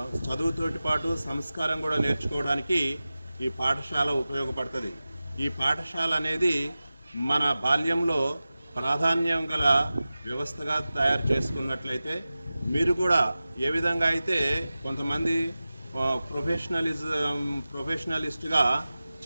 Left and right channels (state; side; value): inverted; both; correlation -0.96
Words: చదువుతోటి పాటు సంస్కారం కూడా నేర్చుకోవడానికి ఈ పాఠశాల ఉపయోగపడుతుంది. ఈ పాఠశాల అనేది మన బాల్యంలో ప్రాధాన్యం గల వ్యవస్థగా తయారు చేసుకున్నట్లయితే మీరు కూడా ఏ విధంగా అయితే కొంతమంది ప్రొఫెషనలిస్ట్గా